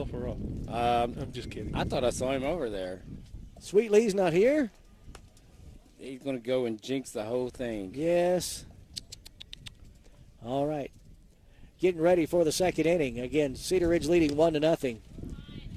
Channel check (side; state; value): both; identical; correlation 1.00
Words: Rock. I'm just kidding. I thought I saw him over there. Sweet Lee's not here? He's going to go and jinx the whole thing. Yes. All right. Getting ready for the second inning. Again, Cedar Ridge leading 1-0.